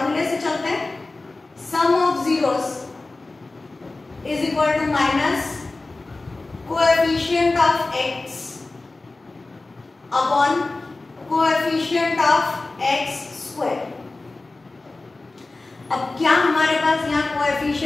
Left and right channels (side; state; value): right; quieter; 3.3 dB